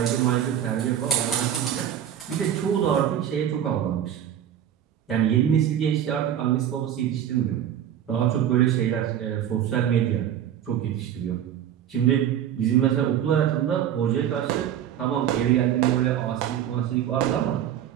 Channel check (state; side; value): quieter; left; 10.2 dB